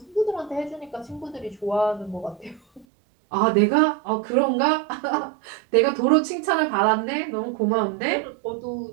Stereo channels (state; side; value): drops out; left; at 2.9 s